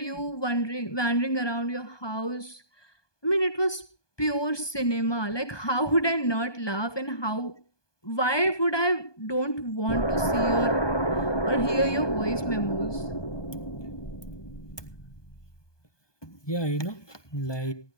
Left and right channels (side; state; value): right; late; 1.2 ms